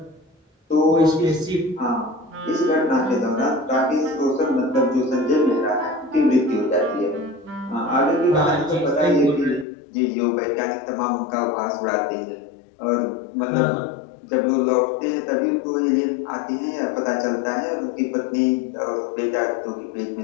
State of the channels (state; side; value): drops out; right; at 9.7 s